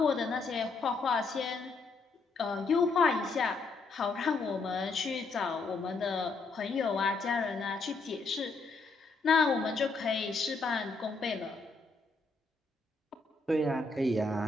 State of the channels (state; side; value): quieter; right; 3.9 dB